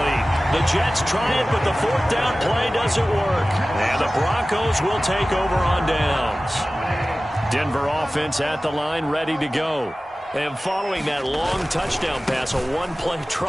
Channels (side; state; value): both; normal; correlation 0.97